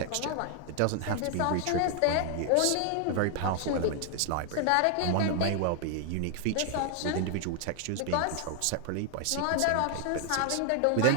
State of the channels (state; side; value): different; both; correlation 0.00